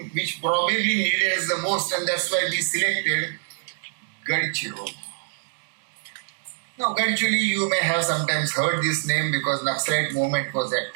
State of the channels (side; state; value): left; silent; digital silence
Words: which probably needed us the most, and that's why we selected Gadchiroli. Now, Gadchiroli, you may have sometimes heard this name because Naxalite movement was